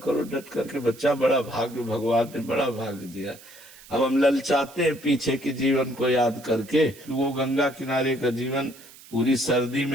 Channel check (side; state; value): right; noise; hiss, 21 dB below the sound